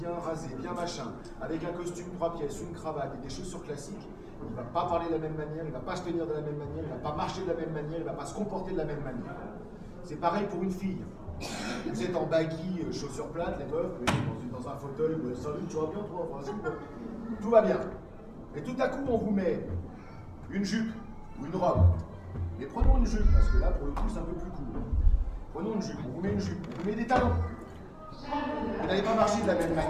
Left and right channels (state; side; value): identical; both; correlation 1.00